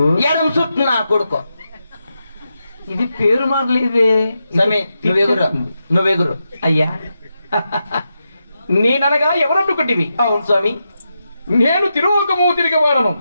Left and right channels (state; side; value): inverted; both; correlation -0.87